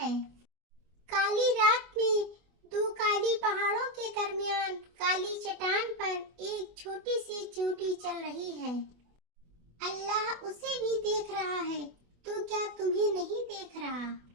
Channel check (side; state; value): left; late; 24 ms